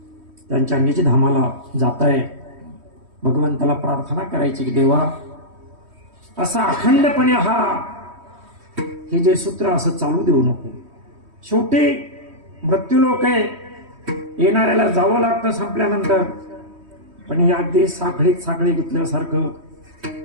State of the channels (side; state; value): left; late; 3.1 ms